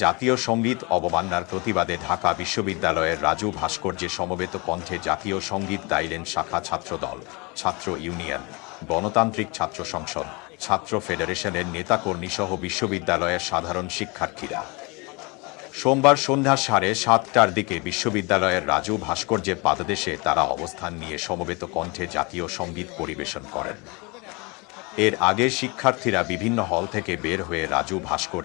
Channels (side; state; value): right; quieter; 28.3 dB